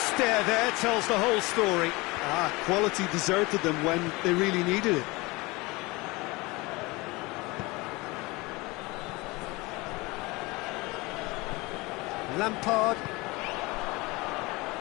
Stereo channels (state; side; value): quieter; right; 23.5 dB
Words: there tells the whole story. Quality deserted them when they really needed it. Lampard.